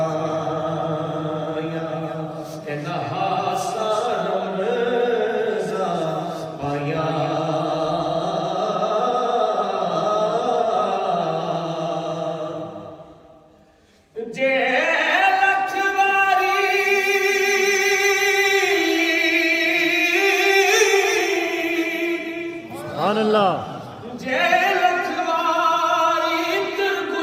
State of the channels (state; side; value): identical; both; correlation 1.00